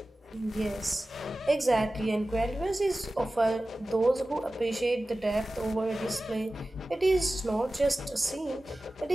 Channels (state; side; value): normal; both; correlation 0.96